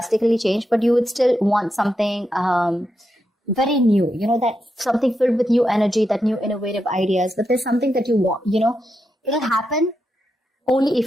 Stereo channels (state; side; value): normal; both; correlation 0.85